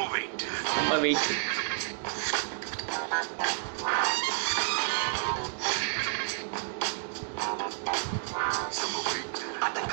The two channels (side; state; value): left; silent; digital silence